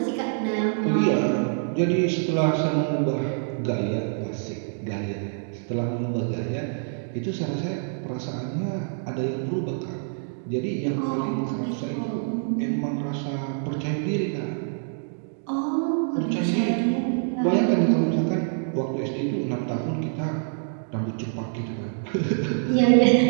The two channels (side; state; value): left; silent; digital silence